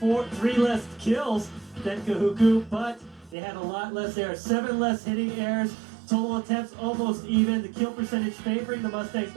less kills than Kahuku, but they had a lot less errors. 7 less hitting errors. Total attempts almost even. The kill percentage favoring the Mustangs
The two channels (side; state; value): left; drops out; at 3.4 s